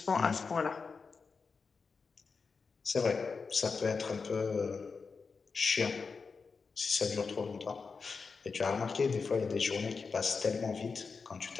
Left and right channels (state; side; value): quieter; right; 4.9 dB